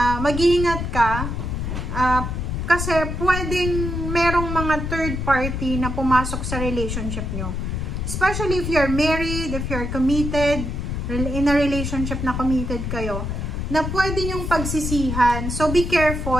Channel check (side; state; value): left; noise; rumble, 3 dB below the sound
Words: mag-iingat ka kasi pwedeng merong mga third party na pumasok sa relationship nyo. Especially if you're married, if you're committed, in a relationship na committed kayo, na pwede nyong pagsisihan. So be